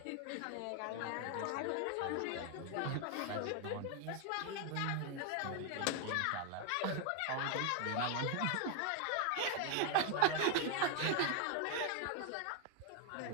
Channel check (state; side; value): different; both; correlation 0.00